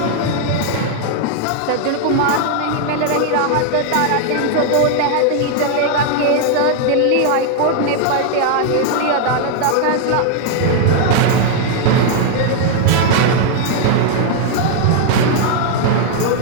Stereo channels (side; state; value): both; different; correlation 0.00